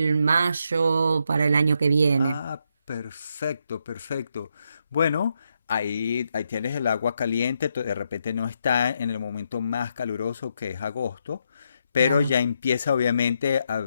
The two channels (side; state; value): both; inverted; correlation -0.80